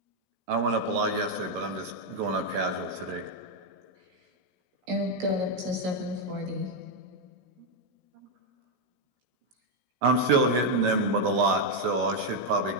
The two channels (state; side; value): late; left; 16 ms